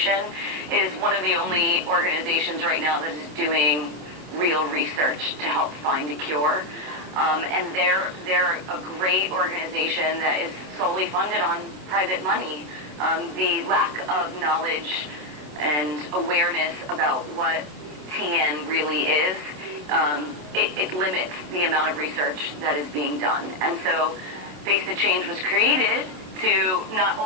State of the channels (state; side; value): late; left; 27 ms